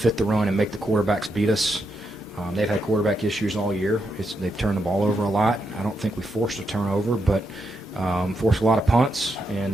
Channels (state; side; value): normal; both; correlation 0.82